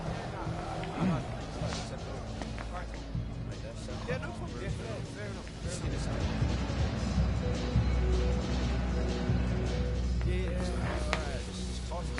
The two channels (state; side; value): identical; both; correlation 1.00